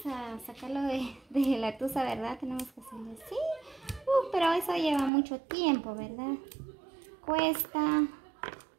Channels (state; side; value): drops out; left; at 5.1 s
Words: a sacarlo de la tusa, ¿verdad? Tenemos que hacerlo así. Pero eso lleva mucho tiempo, ¿verdad? Cuesta.